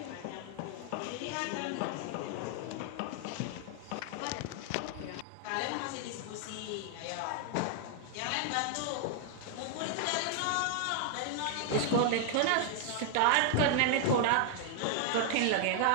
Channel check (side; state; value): both; different; correlation 0.00